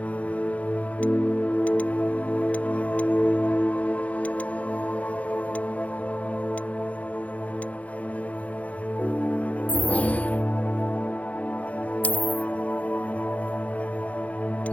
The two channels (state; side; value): late; right; 0.067 ms